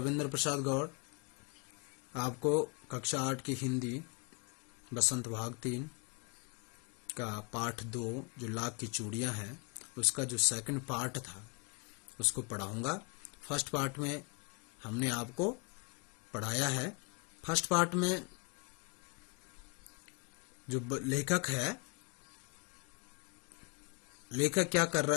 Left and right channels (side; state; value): right; quieter; 32.9 dB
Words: प्रसाद गौड़ आपको कक्षा 8 की हिंदी बसंत भाग 3 का पाठ 2 जो लाख की चूड़ियां हैं उसका जो सेकंड पार्ट था उसको पढ़ाऊंगा। फर्स्ट पार्ट में हमने आपको पढ़ाया है। फर्स्ट पार्ट में जो लेखक है, लेखक क्या कर